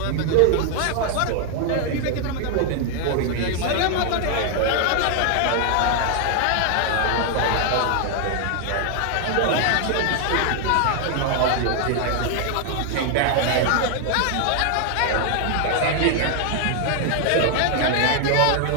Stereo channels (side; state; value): both; different; correlation 0.00